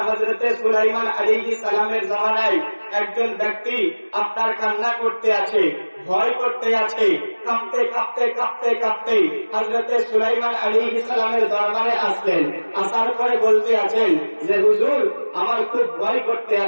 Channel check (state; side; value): inverted; both; correlation -1.00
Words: হযরতে সুলাইমান আলাইহিস সালামের জামানায় একজন ব্যক্তি আপনার কান্না করতে আছে, ভয় করতে আছে, কাঁপতে কাঁপতে কাঁপতে কাঁপতে হযরতে সুলাইমান আলাইহিস সালামের দরবারে আসলেন। আসার পরে বলতে আছেন যে হুজুর, আমার খুব ভয় করতে